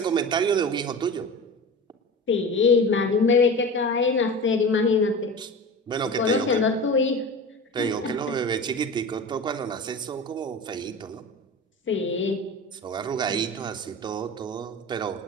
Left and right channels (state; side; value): normal; both; correlation 0.31